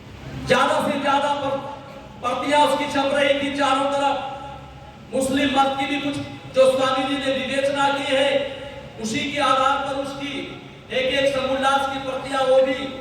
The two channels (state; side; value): identical; both; correlation 1.00